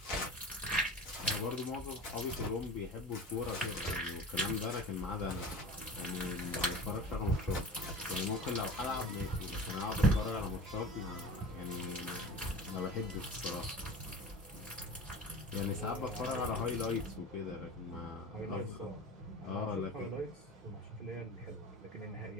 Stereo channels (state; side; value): normal; both; correlation 0.35